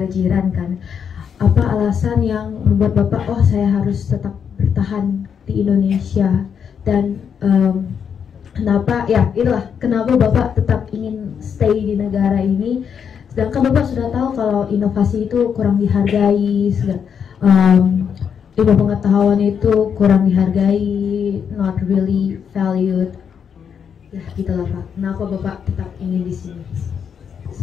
jiran kan. Apa alasan yang membuat Bapak, oh saya harus tetap bertahan di Indonesia, dan kenapa ya itulah kenapa Bapak tetap ingin stay di negara ini, sedangkan Bapak sudah tahu kalau inovasi itu kurang dihargai, ilmu pengetahuan itu kurang dihargai, not really valued. Ya gitulah Pak, kenapa Bapak tetap ingin di sini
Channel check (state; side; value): quieter; right; 7.4 dB